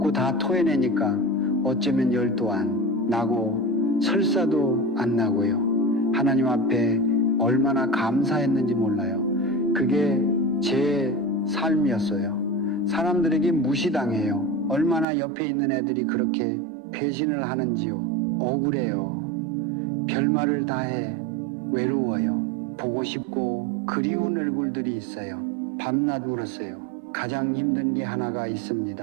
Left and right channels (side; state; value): left; drops out; at 15.1 s